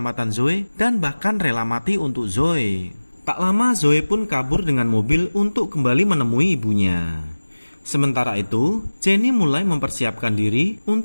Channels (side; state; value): both; inverted; correlation -1.00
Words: Zoe dan bahkan rela mati untuk Zoe. Tak lama Zoe pun kabur dengan mobil untuk kembali menemui ibunya. Sementara itu, Jenny mulai mempersiapkan diri